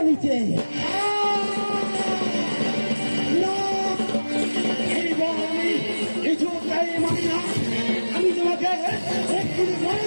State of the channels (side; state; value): both; inverted; correlation -1.00